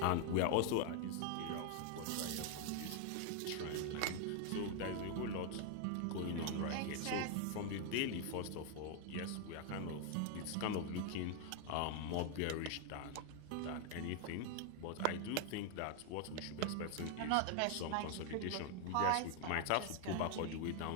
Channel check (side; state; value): both; different; correlation 0.00